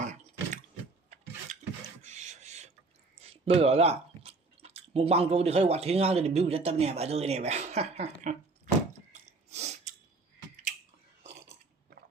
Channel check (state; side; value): quieter; left; 3.6 dB